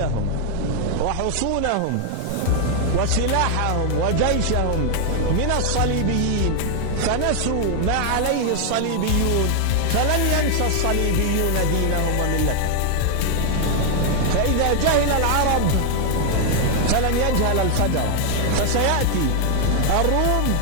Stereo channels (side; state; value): both; different; correlation 0.00